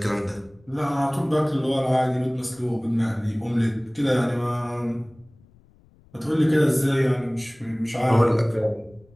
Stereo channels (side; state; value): left; noise; rumble, 29 dB below the sound